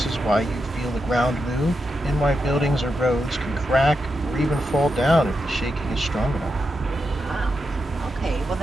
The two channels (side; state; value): both; normal; correlation 0.86